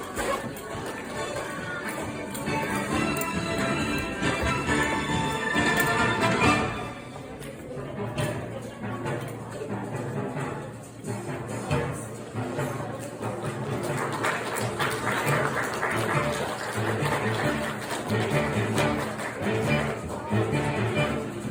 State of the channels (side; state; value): both; identical; correlation 1.00